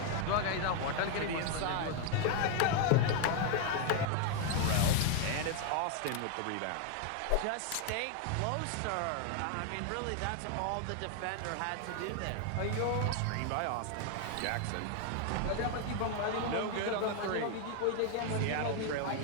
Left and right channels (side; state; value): both; different; correlation 0.00